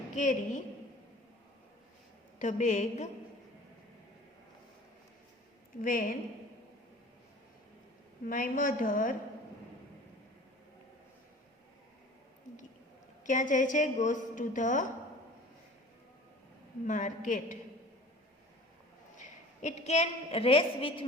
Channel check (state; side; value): normal; both; correlation 0.44